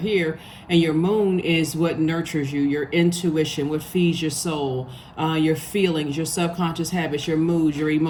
And your moon is what nurtures you, your intuition, what feeds your soul, your feelings, your subconscious habits, your moods, your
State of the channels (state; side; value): identical; both; correlation 1.00